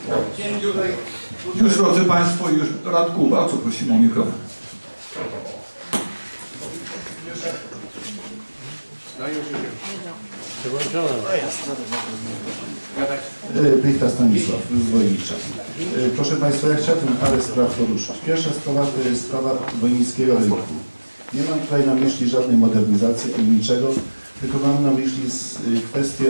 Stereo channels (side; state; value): both; inverted; correlation -1.00